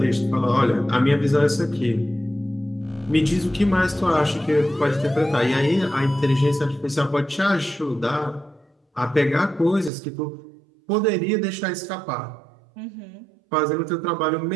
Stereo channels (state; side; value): drops out; left; at 9.9 s